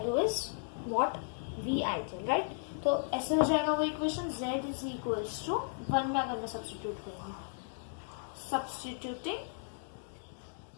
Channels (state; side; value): silent; right; digital silence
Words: is what? V ideal, right? तो ऐसे हो जाएगा वो equation z is equals to 1 में अगर मैं सब्स्टिट्यूट करूंगी, सब्स्टिट्यूटिंग